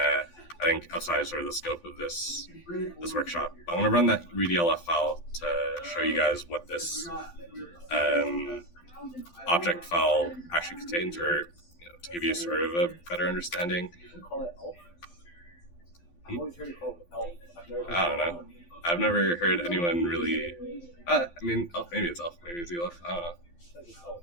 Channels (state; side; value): late; right; 12 ms